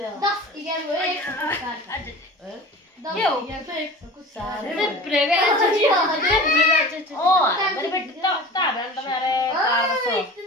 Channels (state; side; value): normal; both; correlation 0.37